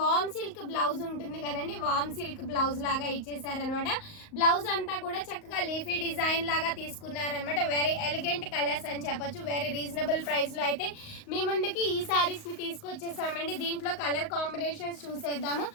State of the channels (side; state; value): right; late; 38 ms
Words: సిల్క్ బ్లౌజ్ ఉంటుంది కదండి, వామ్ సిల్క్ బ్లౌజ్ లాగా ఇచ్చేసారనమాట. బ్లౌజ్ అంతా కూడా చక్కగా లీఫీ డిజైన్ లాగా తీసుకున్నారనమాట. వెరీ ఎలిగెంట్ కలర్స్ అని చెప్పొచ్చు. వెరీ రీజనబుల్ ప్రైస్ లో అయితే మీ ముందుకి ఈ సారీస్ ని తీసుకొచ్చేసామండి. దీంట్లో కలర్ కాంబినేషన్స్ చూసేద్దాము.